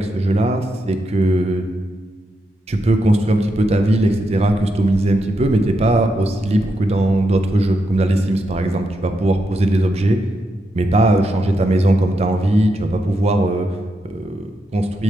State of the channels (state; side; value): normal; both; correlation 0.83